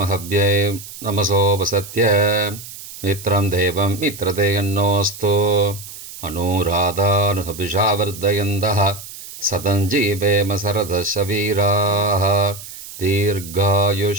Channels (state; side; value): noise; right; hiss, 14 dB below the sound